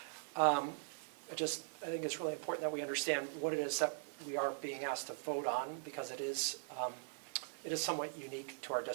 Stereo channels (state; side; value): silent; left; 50 dB below the other